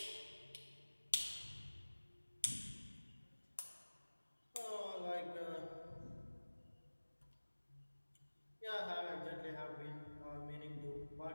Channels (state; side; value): inverted; both; correlation -1.00